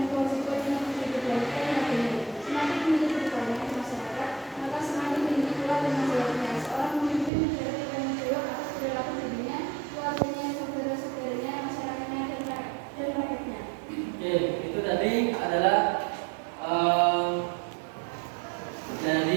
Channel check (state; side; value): drops out; left; at 7.3 s